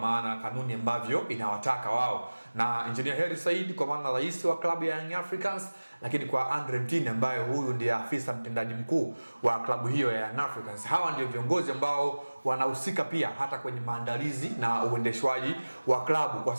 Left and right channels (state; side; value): inverted; both; correlation -1.00